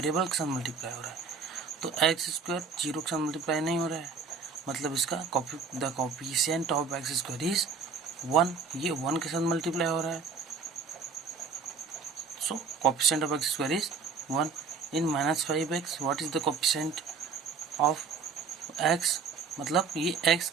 के साथ मल्टीप्लाई हो रहा है। तो x स्क्वायर जीरो के साथ मल्टीप्लाई नहीं हो रहा है, मतलब इसका the coefficient of x square is 1, ये 1 के साथ मल्टीप्लाई हो रहा है। So coefficient of x square is 1 in minus 5x what is the coefficient of x, मतलब ये x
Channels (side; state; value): left; quieter; 5.2 dB